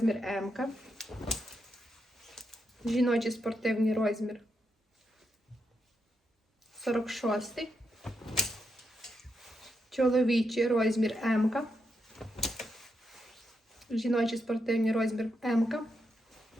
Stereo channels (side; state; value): both; normal; correlation 0.83